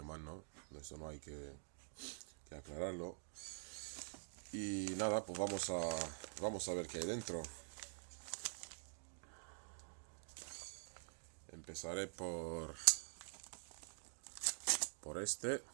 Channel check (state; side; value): silent; left; digital silence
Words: ¿no? Eso no hay que aclararlo. Y nada, pues vamos a ver qué hay dentro. Empezaré por este.